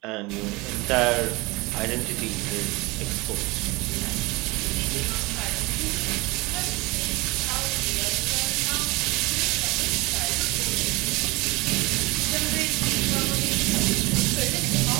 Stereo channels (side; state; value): left; quieter; 23.7 dB